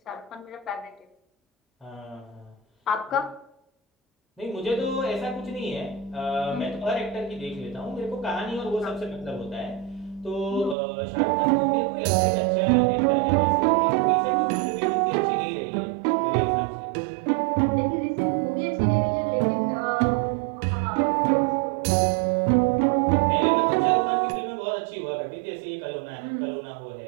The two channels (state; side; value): drops out; left; at 10.8 s